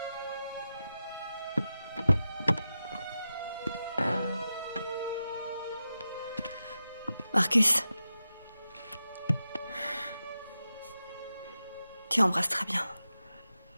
Marcus. Tu embrasses très bien.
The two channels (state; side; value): inverted; both; correlation -0.91